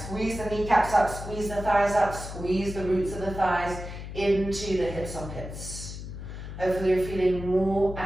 the kneecaps up, squeeze the thighs up, squeeze the roots of the thighs into the hip sockets. Hopefully you're feeling more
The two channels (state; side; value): noise; left; hum, 9 dB below the sound